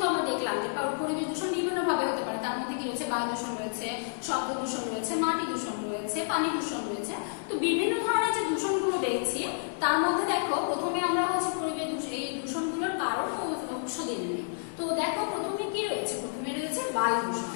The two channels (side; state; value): right; silent; 58 dB below the other